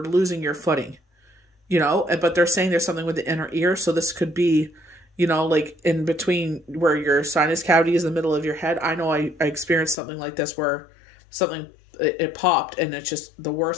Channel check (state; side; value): drops out; right; at 10.0 s